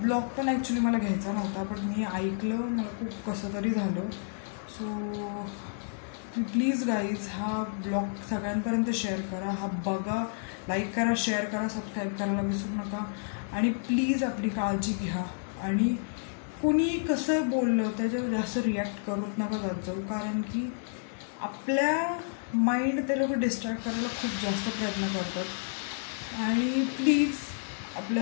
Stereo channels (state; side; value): silent; right; digital silence